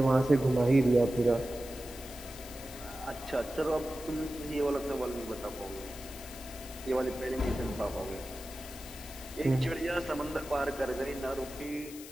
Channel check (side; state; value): left; noise; hiss, 15 dB below the sound